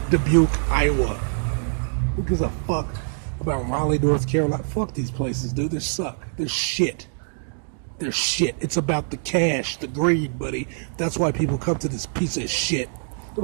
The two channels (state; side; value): silent; left; digital silence